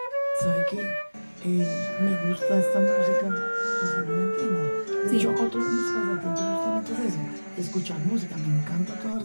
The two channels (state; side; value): inverted; both; correlation -1.00